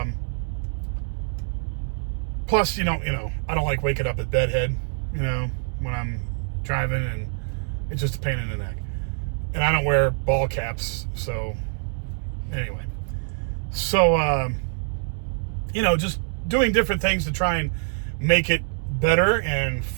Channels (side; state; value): left; silent; 62 dB below the other